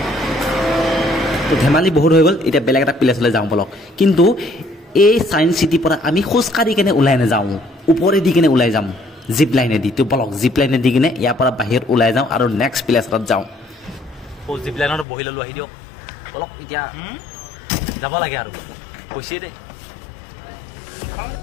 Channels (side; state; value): right; drops out; at 15.1 s